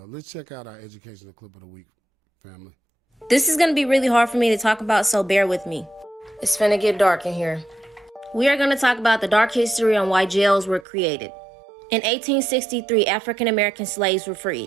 let's check out our educational clip of the week, family. This is going to be really hard for me to talk about, so bear with me. It's finna get dark in here. We are going to talk about the dark history on why jails were created. In 1863, African American slaves were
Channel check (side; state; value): left; drops out; at 10.9 s